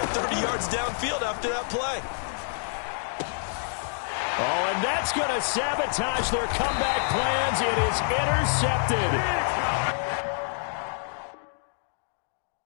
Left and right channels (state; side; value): silent; right; digital silence